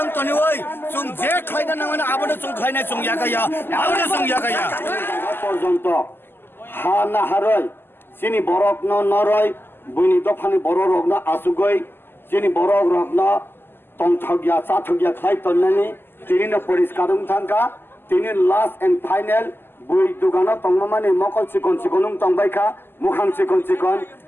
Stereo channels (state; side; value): late; right; 0.10 ms